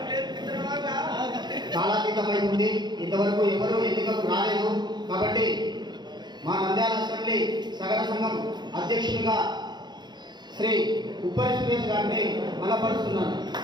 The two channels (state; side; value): late; left; 0.21 ms